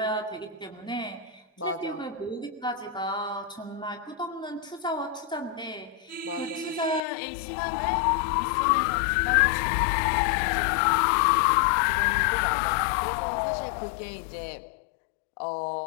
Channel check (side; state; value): right; drops out; at 7.0 s